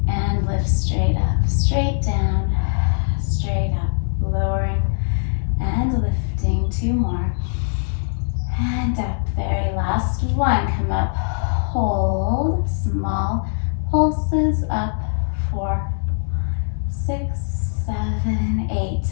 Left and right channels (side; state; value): right; silent; digital silence